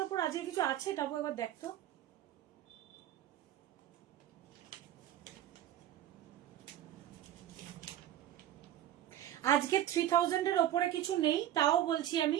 ওপর আজকে কিছু আছে, তারপর একবার দেখতো। আজকে 3000-এর ওপরে কিছু নেই, তাও বলছি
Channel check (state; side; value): quieter; left; 12.1 dB